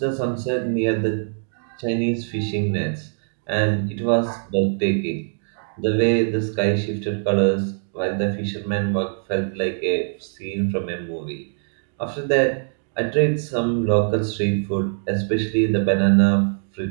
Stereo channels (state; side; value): silent; left; digital silence